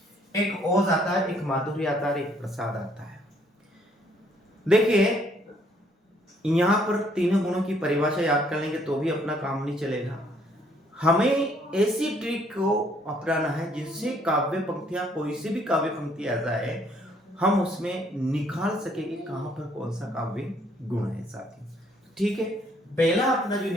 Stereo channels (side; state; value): both; normal; correlation 0.65